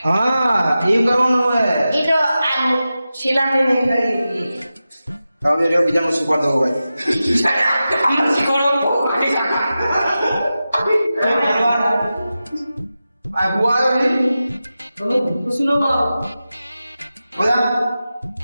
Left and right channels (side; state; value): both; inverted; correlation -0.93